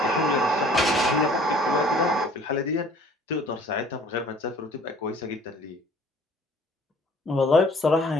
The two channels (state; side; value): normal; both; correlation 0.53